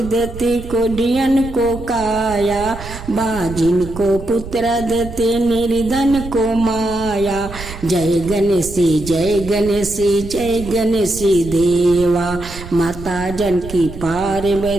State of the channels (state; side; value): noise; right; rumble, 12 dB below the sound